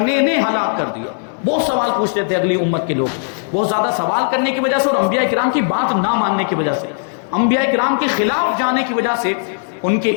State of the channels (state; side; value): silent; right; digital silence